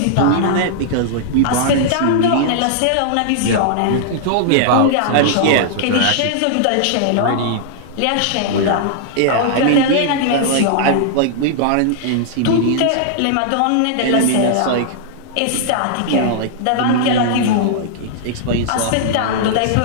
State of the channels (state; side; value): different; both; correlation -0.01